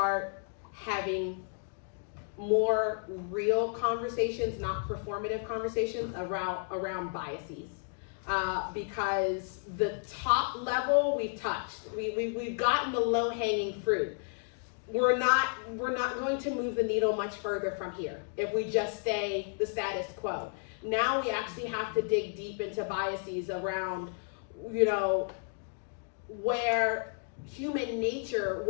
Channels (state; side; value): silent; right; 56 dB below the other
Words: having more real conversations, not performative conversations around biases. Because the top level we've touched, we've gotten the low-hanging fruit. We're not going to move the needle much further from here if we just stay the status quo. Now we actually have to dig deep into biases around, where human nature